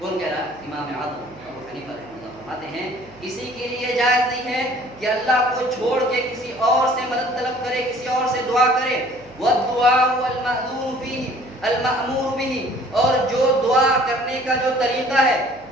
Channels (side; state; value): right; noise; hum, 24 dB below the sound